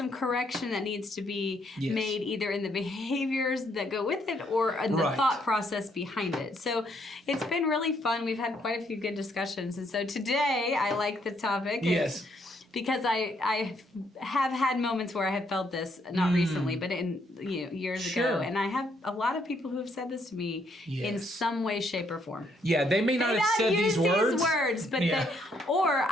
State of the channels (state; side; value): normal; both; correlation 0.71